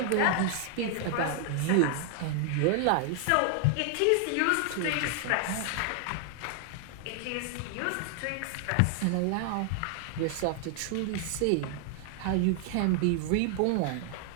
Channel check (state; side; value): different; both; correlation 0.00